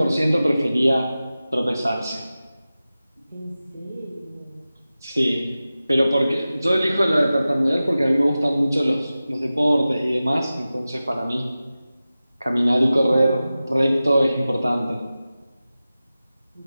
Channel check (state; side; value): inverted; both; correlation -0.95